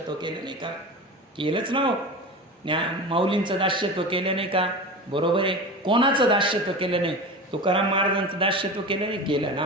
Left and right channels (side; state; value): both; normal; correlation 0.30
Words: केलं नाही का. केलंच ना हो. माऊलींचं दास्यत्व केलं नाही का. बरोबर आहे. कोणाचं दास्यत्व केलं नाही. तुकाराम महाराजांचं दास्यत्व केलं नाही. केलं.